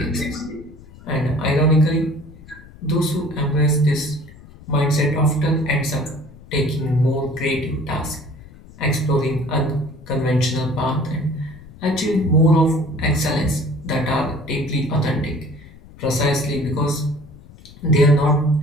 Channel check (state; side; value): noise; left; rumble, 20 dB below the sound